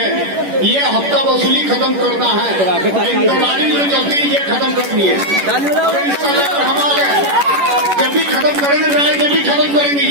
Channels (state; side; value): late; left; 11 ms